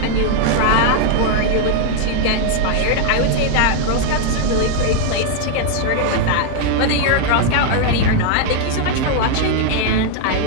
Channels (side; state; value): both; different; correlation 0.00